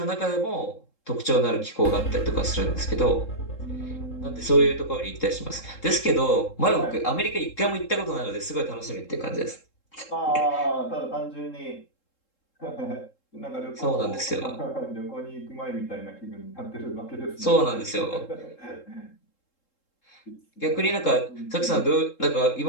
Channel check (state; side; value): late; right; 3.7 ms